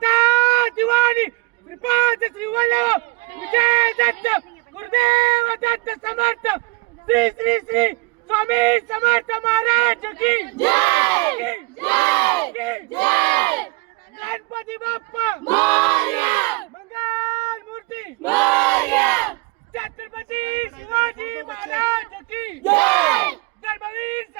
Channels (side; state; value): left; quieter; 25.9 dB